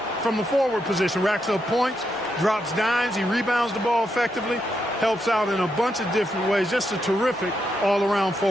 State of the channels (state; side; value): normal; both; correlation 0.82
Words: from the forward position. Racks up points, drops dimes, he rebounds the ball effectively, helps out in a bunch of different ways. Just a terrific all-around